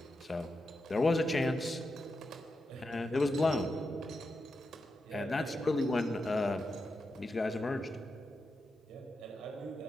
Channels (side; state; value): both; normal; correlation 0.88